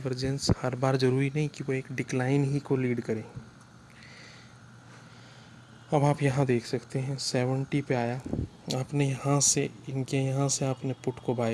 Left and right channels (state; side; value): identical; both; correlation 1.00